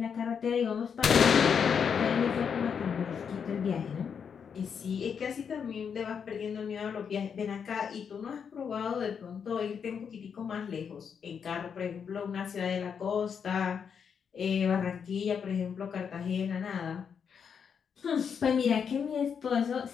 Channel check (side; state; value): right; quieter; 6.9 dB